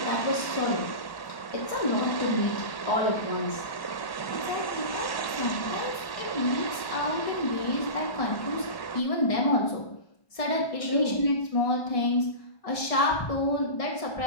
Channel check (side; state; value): right; late; 1.1 ms